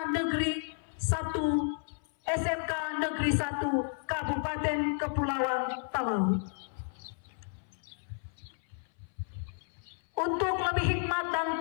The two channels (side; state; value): right; silent; 56 dB below the other